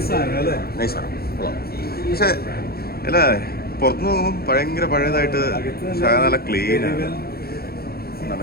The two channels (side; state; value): right; late; 0.45 ms